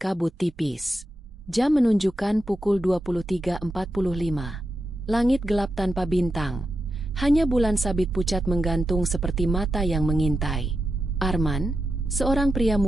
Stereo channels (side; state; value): both; normal; correlation 0.88